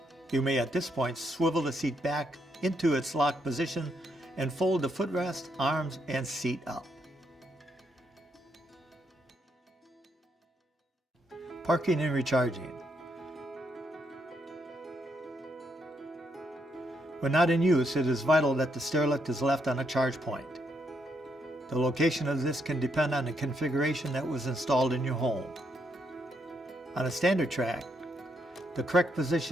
You may at this point swivel the seat back into its locked position and fold the footrest, arms, and seat up. Parking and recharging. When not in use, it is vital that the stairlift is left on a charge point. The location of this can depend on the configuration that was installed in your home. On a standard track, the correct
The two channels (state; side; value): normal; both; correlation 0.77